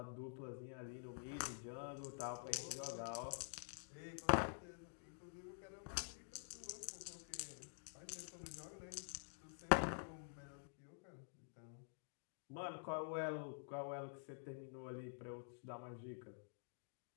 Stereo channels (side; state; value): right; silent; digital silence